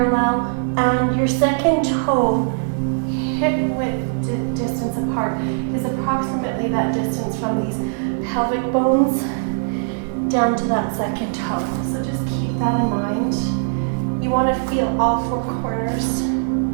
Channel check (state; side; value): silent; left; 65 dB below the other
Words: and your second toe, hip width distance apart, is approximately that distance from these pelvic bones down to that second toe. So just keep that in mind. You want to feel all four corners